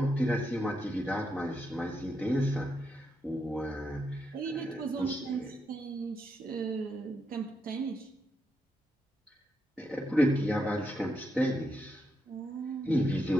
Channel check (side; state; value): both; normal; correlation 0.82